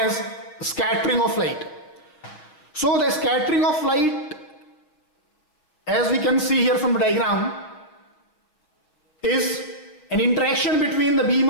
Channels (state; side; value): late; right; 6.6 ms